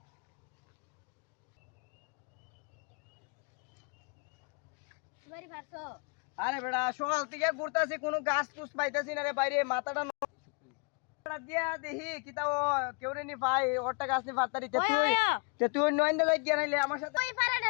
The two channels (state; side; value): quieter; right; 33.8 dB